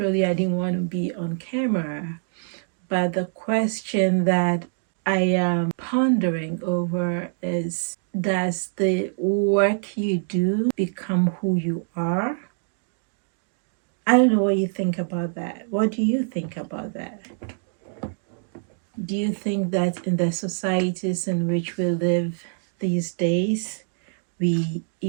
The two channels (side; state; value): left; silent; digital silence